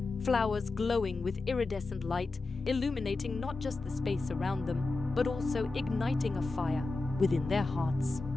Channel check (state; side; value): quieter; right; 3.5 dB